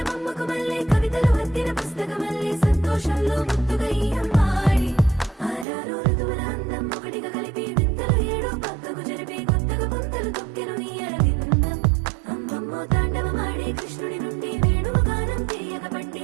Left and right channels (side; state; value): left; drops out; at 5.7 s